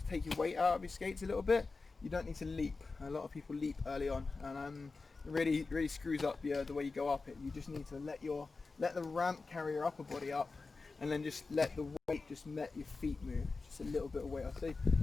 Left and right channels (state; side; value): quieter; right; 4.0 dB